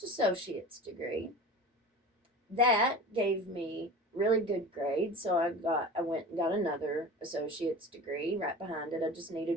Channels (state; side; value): normal; both; correlation 0.35